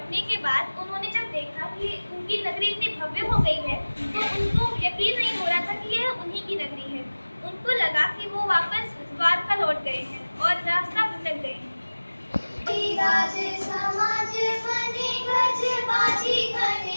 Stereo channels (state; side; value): inverted; both; correlation -1.00